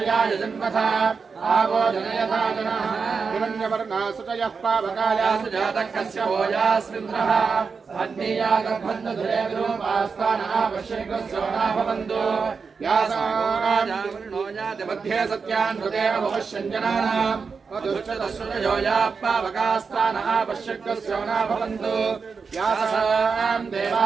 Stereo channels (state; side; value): quieter; left; 5.2 dB